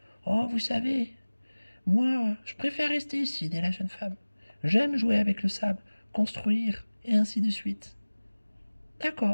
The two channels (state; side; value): inverted; both; correlation -1.00